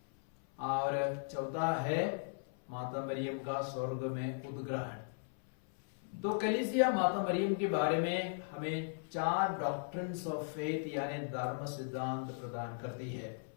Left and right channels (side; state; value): right; silent; 53 dB below the other